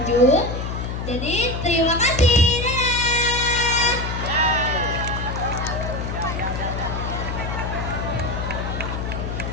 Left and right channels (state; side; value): noise; left; hum, 4 dB below the sound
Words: Jadi terima kasih.